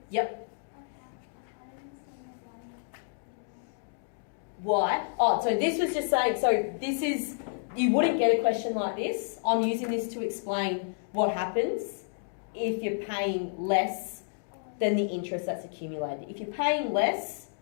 Yep. Why? Oh, so this was just saying, so this is, you wouldn't get a question like this. I'm using this to explain what happens if you're paying less than the interest that's accumulated. If you're paying less,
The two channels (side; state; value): right; silent; digital silence